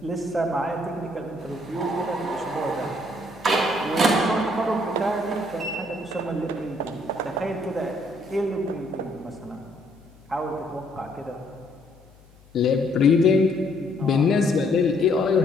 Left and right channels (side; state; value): left; noise; hum, 26 dB below the sound